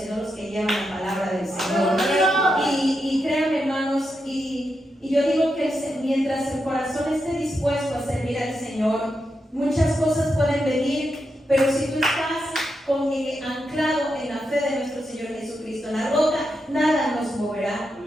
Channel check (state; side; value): normal; both; correlation 0.85